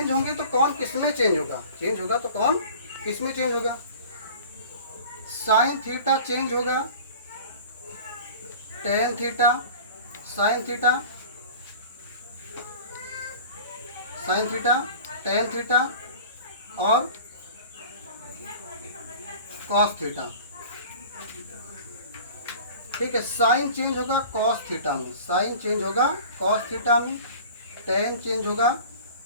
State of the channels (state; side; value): inverted; both; correlation -0.42